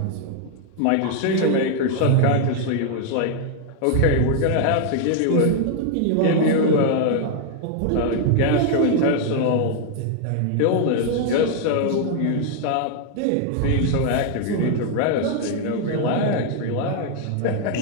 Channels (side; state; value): both; different; correlation 0.00